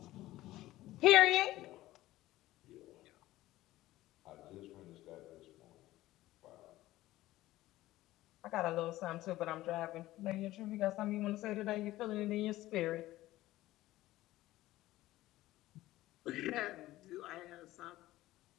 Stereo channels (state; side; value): quieter; right; 16.3 dB